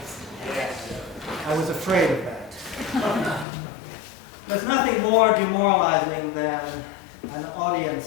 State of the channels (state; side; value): drops out; right; at 3.5 s